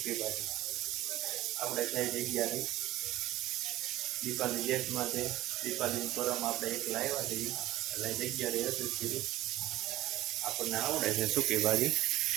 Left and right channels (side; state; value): left; quieter; 15.9 dB